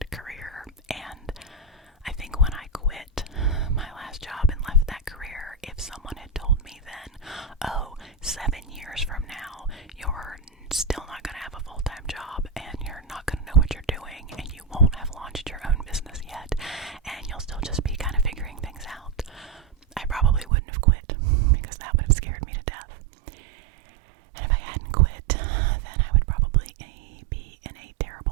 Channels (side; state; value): left; drops out; at 20.5 s